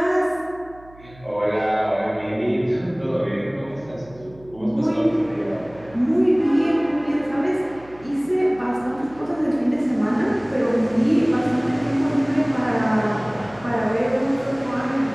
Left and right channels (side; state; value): right; noise; hum, 23 dB below the sound